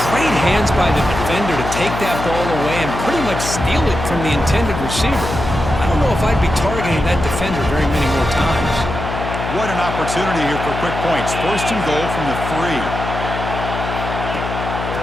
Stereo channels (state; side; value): noise; left; hum, 5 dB below the sound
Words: great hands by the defender to take that ball away and pretty much steal it from the intended receiver. I don't know if I'd be targeting that defender very many more times. What an opportunity here for quick points. First and goal from the 3.